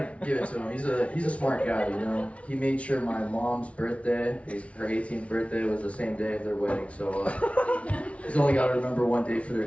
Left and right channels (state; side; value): late; right; 0.063 ms